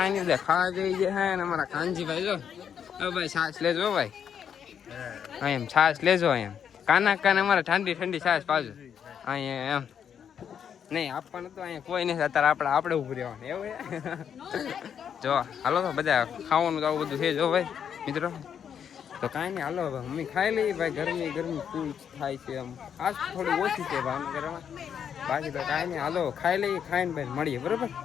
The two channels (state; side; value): quieter; right; 8.1 dB